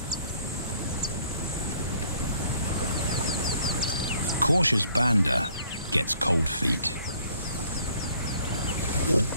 Cautious Banda gets cold feet.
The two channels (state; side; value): inverted; both; correlation -0.60